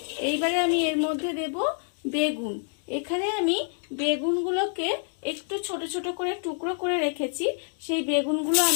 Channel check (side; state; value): right; silent; 60 dB below the other